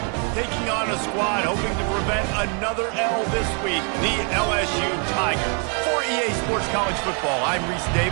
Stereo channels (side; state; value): left; quieter; 38.3 dB